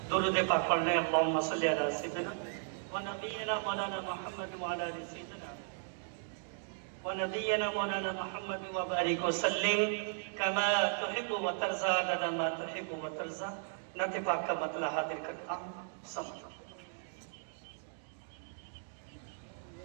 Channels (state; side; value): silent; left; digital silence